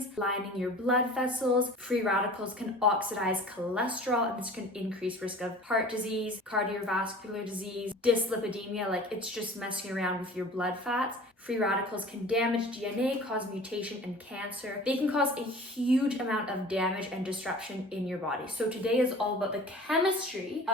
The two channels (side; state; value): both; normal; correlation 0.43